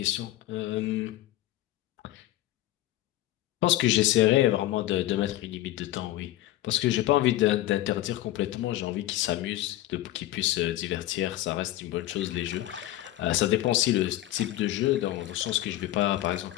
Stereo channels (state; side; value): quieter; right; 15.1 dB